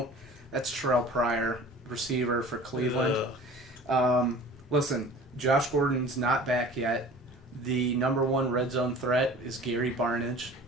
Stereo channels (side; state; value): both; normal; correlation 0.43